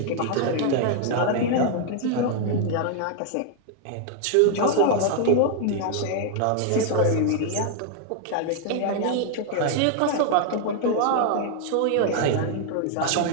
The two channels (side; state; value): both; different; correlation 0.00